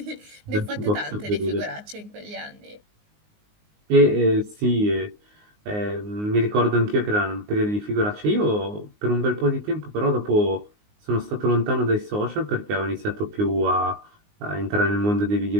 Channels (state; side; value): late; left; 19 ms